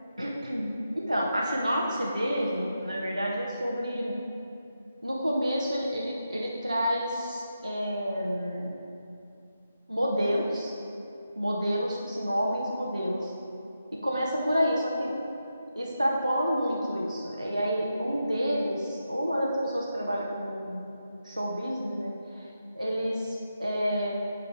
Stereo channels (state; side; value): inverted; both; correlation -0.87